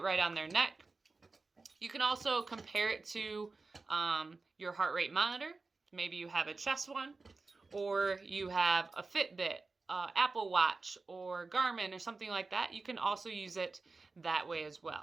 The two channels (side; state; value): left; quieter; 3.8 dB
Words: right on their neck. You can also compare it to your heart rate monitor. Maybe you have a chest one, or you have a Fitbit, Apple Watch, or Garmin, or something like that. You can also use it that way as